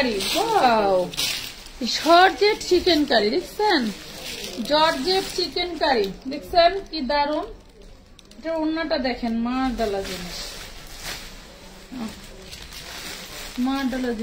Wow, georgette chicken curry দেখছেন? জর্জেট চিকেন কারি দেখছেন কি দারুন। এটা ওড়নাটা দেখেন, মারডালা জিনিস, মারডালা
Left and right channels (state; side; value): identical; both; correlation 1.00